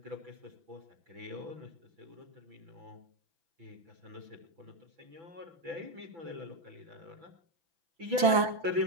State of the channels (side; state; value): left; late; 6.0 ms